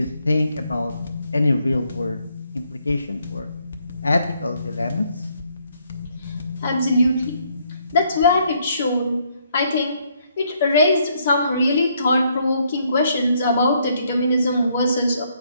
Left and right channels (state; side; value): inverted; both; correlation -0.71